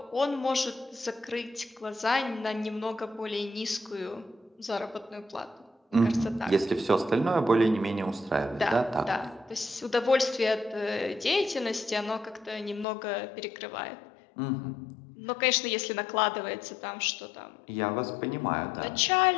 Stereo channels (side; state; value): right; drops out; at 12.9 s